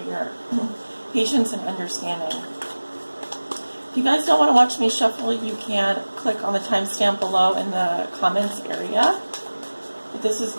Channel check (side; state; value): both; inverted; correlation -1.00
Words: your patience and understanding. If you guys don't want to watch me shuffle, you can click on the timestamp below in the comments area. But this is